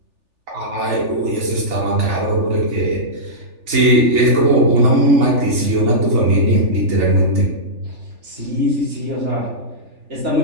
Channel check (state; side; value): late; left; 3.4 ms